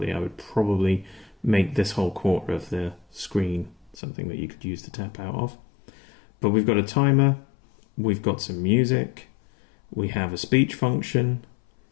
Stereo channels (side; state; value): right; drops out; at 4.0 s